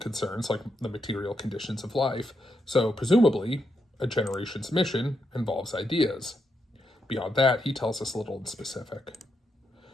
like the material conditions of life, so presumably, a generation's mission involves ideas. Beyond that, he tells us little in specific.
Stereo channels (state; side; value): normal; both; correlation 0.82